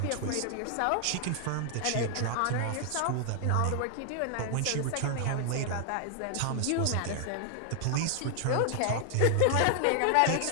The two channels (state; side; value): different; both; correlation 0.00